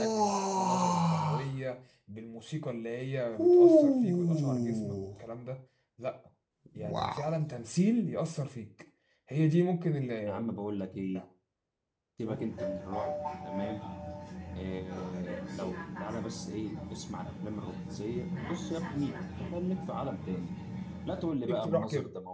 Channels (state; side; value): identical; both; correlation 1.00